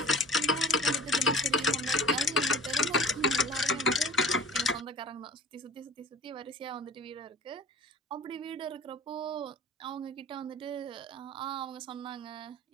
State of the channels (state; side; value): normal; both; correlation 0.43